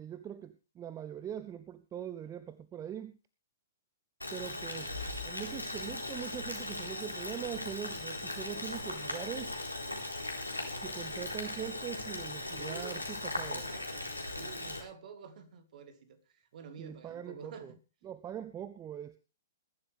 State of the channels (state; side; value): inverted; both; correlation -0.35